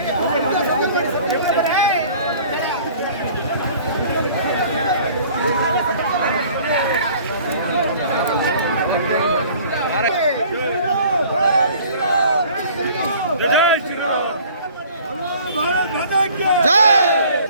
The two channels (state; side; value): inverted; both; correlation -0.50